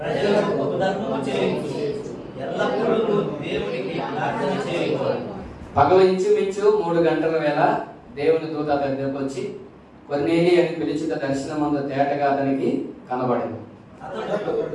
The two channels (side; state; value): both; identical; correlation 1.00